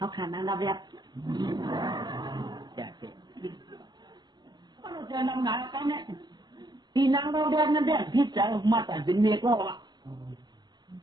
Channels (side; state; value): left; late; 0.21 ms